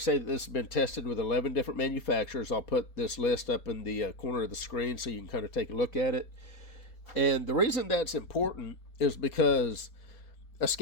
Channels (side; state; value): right; late; 4.2 ms